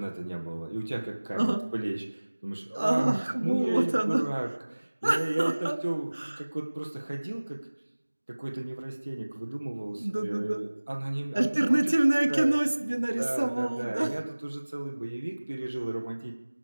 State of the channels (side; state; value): both; inverted; correlation -1.00